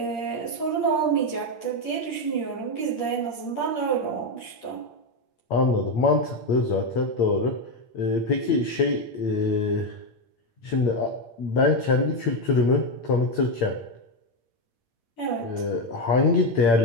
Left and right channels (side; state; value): right; late; 8.6 ms